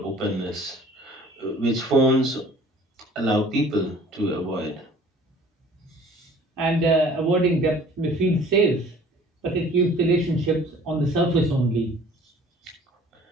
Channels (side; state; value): both; normal; correlation 0.51